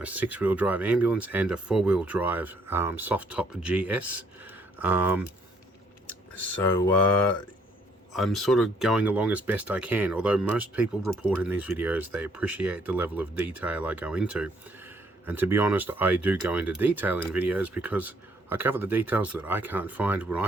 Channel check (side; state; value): both; normal; correlation 0.67